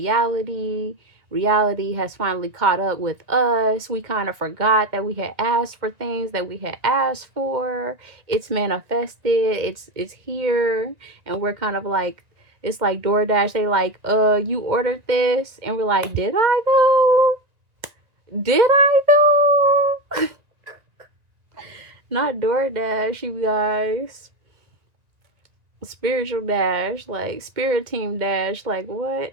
Reality has finally caught up with us. We kind of forgot that we had asked for things that we had asked for. It's manifested. It's here, and we're kind of like, it's like DoorDash. They like, you ordered this, and we're like, did I though? Did I though? Not DoorDash, you guys. Spiritual Dash, like Spirit Team Dash, like what?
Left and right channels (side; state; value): left; late; 1.9 ms